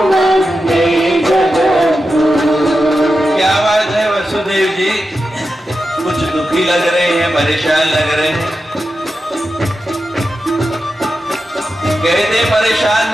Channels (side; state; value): both; normal; correlation 0.90